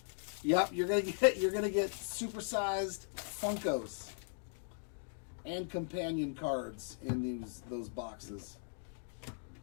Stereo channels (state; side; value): silent; right; digital silence